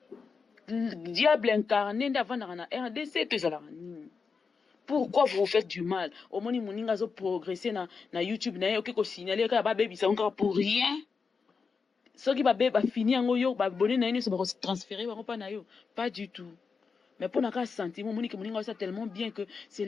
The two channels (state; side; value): quieter; right; 5.2 dB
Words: Diable incarné ndavana na RDC to ezala nini? Pourquoi vous faites du mal? Au moins, ils ont progressé na YouTube, na yoke ko signaler ka ba baby ça encore pour rien. Ceux qui ba fini en yo ba bonné na se ba transférer ba pas na yo, pas du tout. Mais pour n'a sentiment monique moninga ça tellement bien que c'est